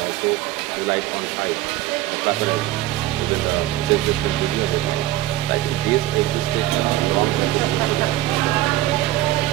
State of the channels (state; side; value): quieter; left; 15.3 dB